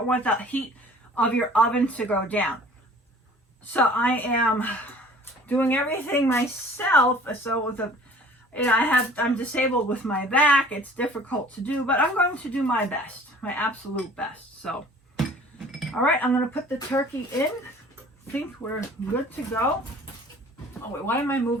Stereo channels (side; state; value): both; normal; correlation 0.49